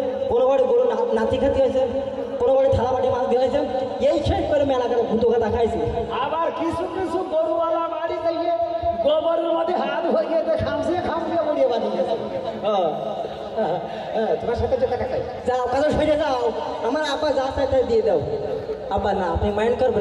কোনো বাড়ি গরু নাতি খাতি হয়েছে, কোনো বাড়ি থালা বাটি মাছ দিয়ে হয়েছে, এই শেষ করে মেলা করে ভূত কথা খাইছে। আবার কিছু কিছু গরুওয়ালা বাড়ি থেকে গোবরের মধ্যে হাত হয়ে খামসিয়ে বড়িয়ে বানিয়েছে। তোমার সাথে যে টাকা খাই যাও কাজে সরে যাও, আমার আব্বা যা চাই তাই দিয়ে দাও। আব্বা না, আপনি মাইন্ড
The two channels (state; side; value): identical; both; correlation 1.00